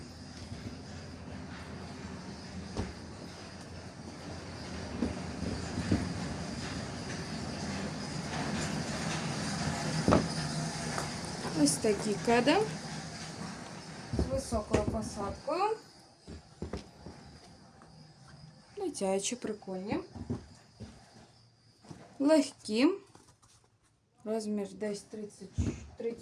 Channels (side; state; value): both; identical; correlation 1.00